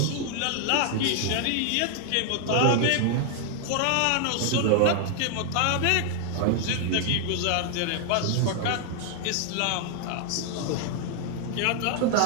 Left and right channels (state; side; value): different; both; correlation 0.00